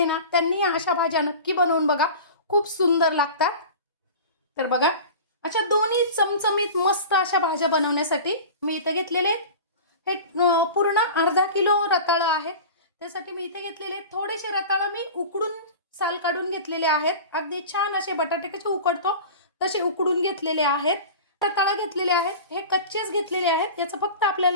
ना त्यांनी अशा भाज्या नक्की बनवून बघा, खूप सुंदर लागतात। तर बघा, अशा दोन्ही चमचमीत मस्त अशा भाज्या बनवण्यासाठी मी इथे घेतलेले हे पूर्ण अर्धा किलो रताळा आहे। त्यासाठी मी इथे घेतलेले थोडेसे रताळा मी उकडून साल काढून घेतलेले आहेत। अगदी छान असे बटाटे कसे उकडतो तसे उकडून घेतलेले आहेत। रताळा घेतलेले आहेत, हे कच्चेच घेतलेले आहेत। याचं फक्त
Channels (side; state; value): both; inverted; correlation -0.35